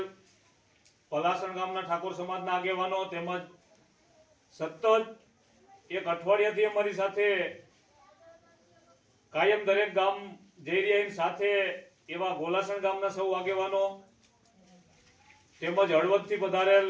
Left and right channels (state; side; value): identical; both; correlation 1.00